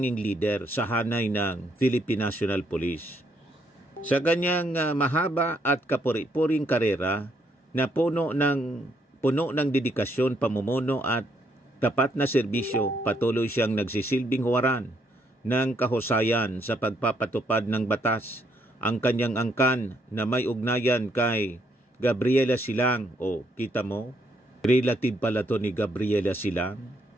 leader sa hanay ng Philippine National Police. Sa kanyang mahaba at kapuri-puring karera na puno ng dedikasyon, pamumuno at tapat na serbisyo, patuloy siyang nagsisilbing huwaran ng kahusayan sa pagpapatupad ng batas. Ang kanyang angkan na may ugnayan kay Gabriela Silang, kita mo, relative pala to ni Gabriela Silang,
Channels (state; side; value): normal; both; correlation 0.72